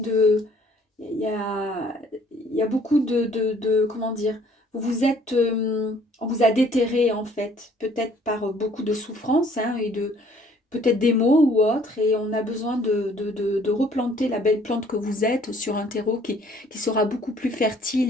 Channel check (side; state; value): both; normal; correlation 0.59